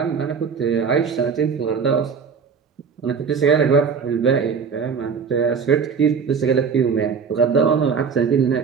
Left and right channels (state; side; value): quieter; left; 6.0 dB